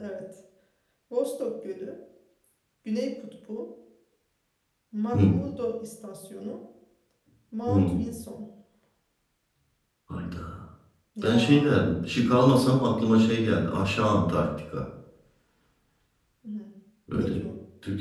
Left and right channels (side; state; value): both; identical; correlation 1.00